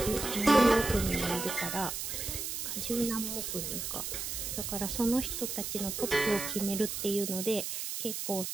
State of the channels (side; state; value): right; noise; hiss, 4 dB below the sound